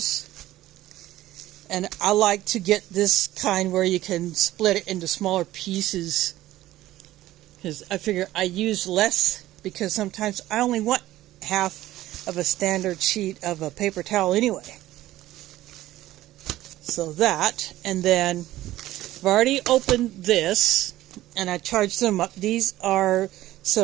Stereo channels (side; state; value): left; quieter; 15.2 dB